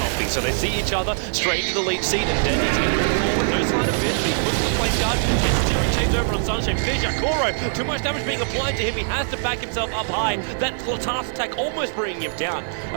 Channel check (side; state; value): left; silent; 64 dB below the other